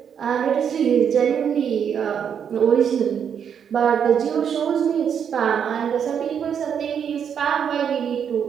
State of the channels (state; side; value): quieter; left; 7.9 dB